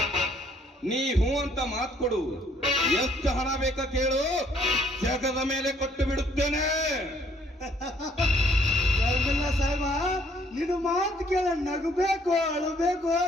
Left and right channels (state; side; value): normal; both; correlation 0.64